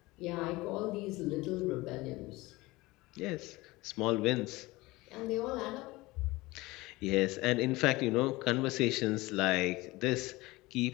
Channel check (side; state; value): right; quieter; 21.0 dB